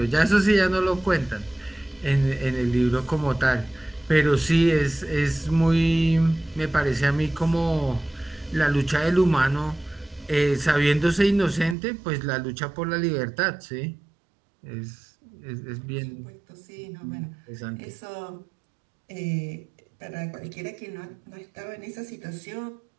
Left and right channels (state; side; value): drops out; left; at 11.8 s